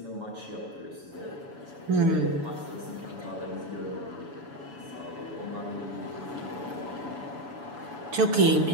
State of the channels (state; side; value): late; left; 7.1 ms